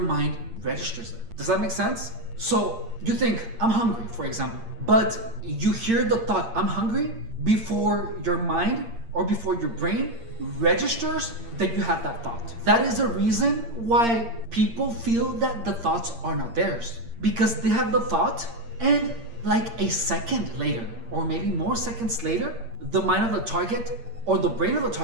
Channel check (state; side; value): late; left; 8.7 ms